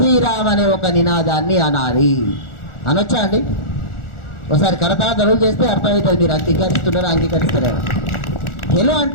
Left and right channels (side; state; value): right; late; 1.4 ms